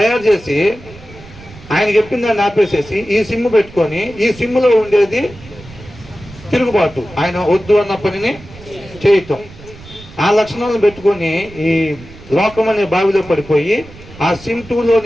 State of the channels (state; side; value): noise; right; rumble, 19 dB below the sound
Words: చేసి ఆయన చెప్పిన దాన్ని ఆపేసేసి ఈ సిమ్ పెట్టుకొని ఈ సిమ్లో ఉండేది తిరుగుబాటు, ఆయన వద్దు అన్న పనిని చేయటం, ఆ లక్షణాలను పెట్టుకొని ఈ లోకం అనే బావిలో పడిపోయి ఆ సిమ్ 2లో